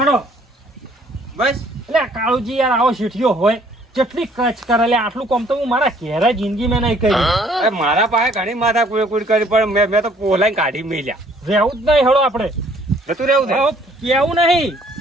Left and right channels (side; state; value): both; normal; correlation 0.60